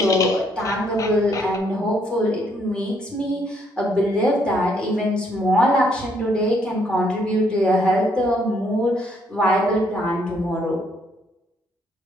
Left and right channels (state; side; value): normal; both; correlation 0.70